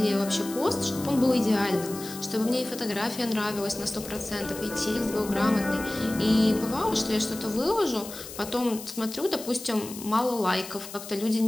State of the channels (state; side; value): noise; left; hiss, 12 dB below the sound